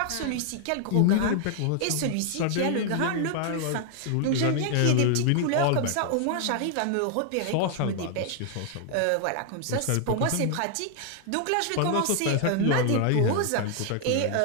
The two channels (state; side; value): different; both; correlation 0.00